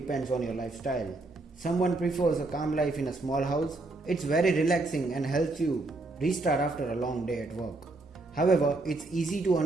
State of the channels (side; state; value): left; quieter; 3.1 dB